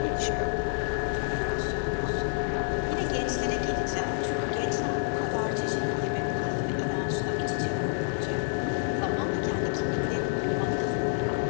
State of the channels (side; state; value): right; silent; digital silence